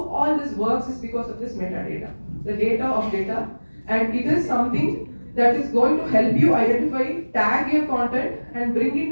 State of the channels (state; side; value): inverted; both; correlation -1.00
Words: all this works is because of this metadata, the data of data, and it is something that is going to help you identify, tag your content, and bring in